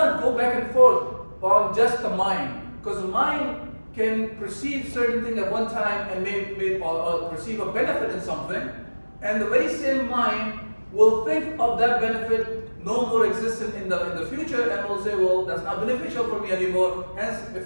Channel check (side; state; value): both; inverted; correlation -1.00